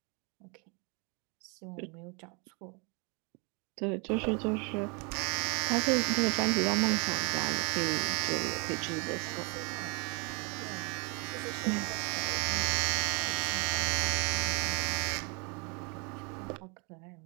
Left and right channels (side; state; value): left; quieter; 32.7 dB